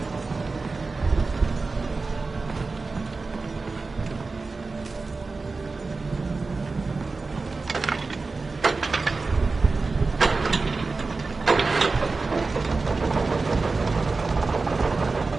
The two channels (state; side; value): quieter; left; 3.9 dB